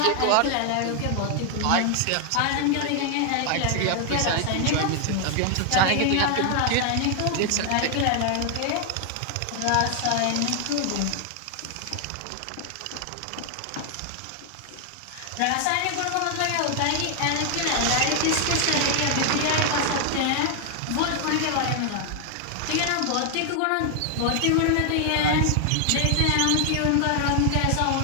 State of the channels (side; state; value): both; different; correlation 0.00